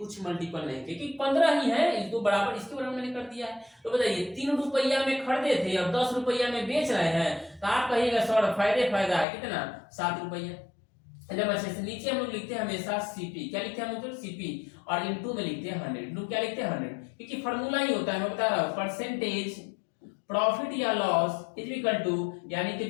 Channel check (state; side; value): drops out; right; at 9.2 s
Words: मल्टीपल नहीं किया, क्योंकि 15 ही है, इसको बराबर इसके बराबर मैंने कर दिया है। तो बताइए 3 रुपया में खरीदे थे और 10 रुपया में बेच रहे हैं, तो आप कहिएगा सर फायदा है कितना 7 रुपया। जब अच्छे से नीचे हम लोग लिखते हैं हमेशा सीपी, क्या लिखते हैं हम लोग सीपी, और इनटू में लिखते हैं 100, इनटू क्या लिखते हैं 100, क्योंकि फॉर्मूला ही होता है, मैं बता रहा हूँ, परसेंटेज प्रॉफिट या लॉस इज इक्वल टू, यानी कि